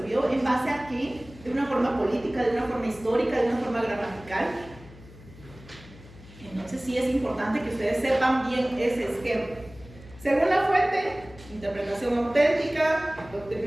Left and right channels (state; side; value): noise; left; hum, 20 dB below the sound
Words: ¿En base a qué? ¿De una forma política, de una forma histórica, de una forma gramatical? Entonces sí es importante que ustedes sepan bien ese esquema. Según la fuente, interpretación auténtica,